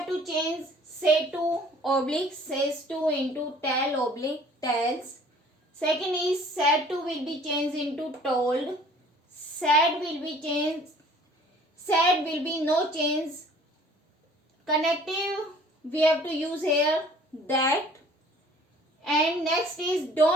to change say to oblique says to into tell oblique tells. Second is said to will be changed into told. Said will be changed. Said will be no change. Connective we have to use here that. And next is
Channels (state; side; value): normal; both; correlation 0.53